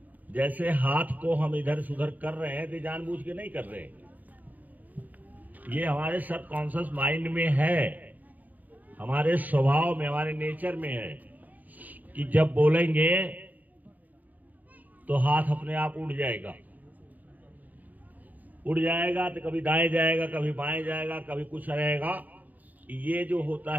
जैसे हाथ को हम इधर से उधर कर रहे हैं तो जानबूझ के नहीं कर रहे हैं, ये हमारे सबकॉन्शियस माइंड में है, हमारे स्वभाव में, हमारे नेचर में है कि जब बोलेंगे तो हाथ अपने आप उड़ जाएगा तो कभी दाएं जाएगा, कभी बाएं जाएगा, कभी कुछ रहेगा। ये जो होता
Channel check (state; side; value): late; left; 0.080 ms